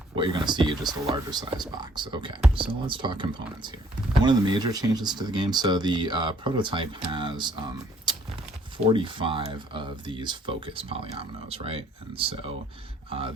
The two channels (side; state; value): both; normal; correlation 0.62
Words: what you're going to see is just a larger size box. Okay, so let's talk components here. One of the major changes to the game, so the prototype has 45 of these focus polyominoes, right? And so